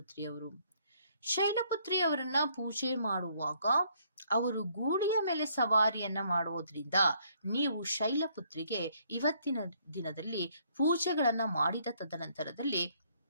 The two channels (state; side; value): inverted; both; correlation -0.67